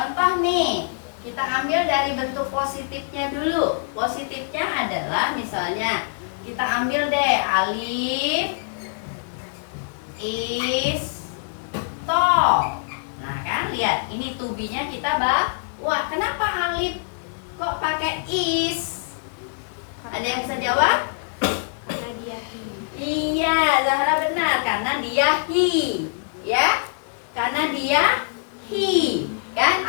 nih, kita ambil dari bentuk positifnya dulu. Positifnya adalah misalnya kita ambil deh Alif is tall. Nah kan, lihat ini to be-nya kita bawa. Kenapa Alif kok pakai is? Ada yang bisa jawab? Karena dia he. Iya, Zahra benar, karena dia he, ya. Karena dia he. Kan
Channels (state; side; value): silent; right; 59 dB below the other